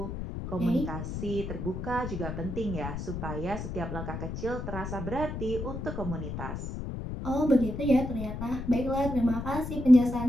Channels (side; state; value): left; noise; rumble, 6 dB below the sound